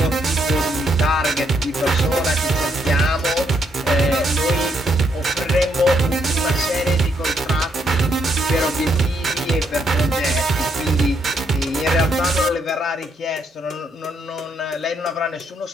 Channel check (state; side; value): normal; both; correlation 0.75